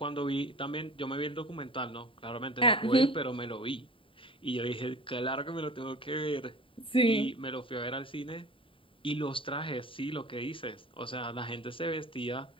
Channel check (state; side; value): late; right; 0.25 ms